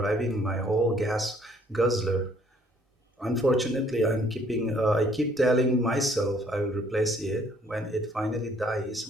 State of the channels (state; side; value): normal; both; correlation 0.62